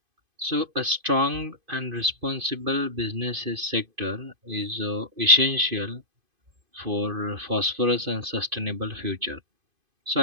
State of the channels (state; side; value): late; left; 2.5 ms